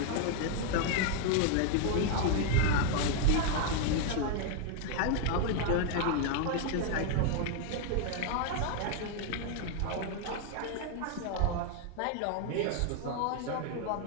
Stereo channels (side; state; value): both; different; correlation 0.00